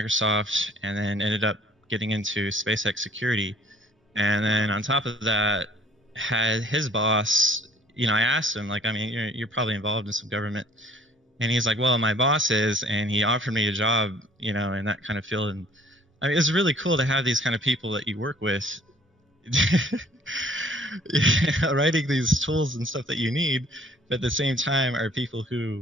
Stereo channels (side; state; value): both; normal; correlation 0.55